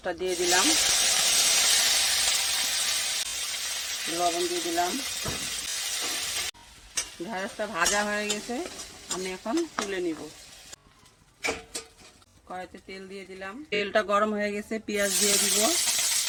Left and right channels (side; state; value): both; identical; correlation 1.00